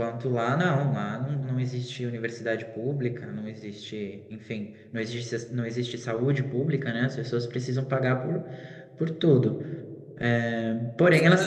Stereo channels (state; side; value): identical; both; correlation 1.00